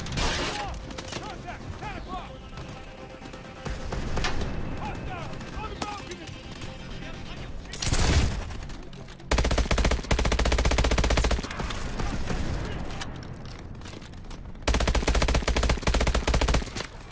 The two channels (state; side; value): identical; both; correlation 1.00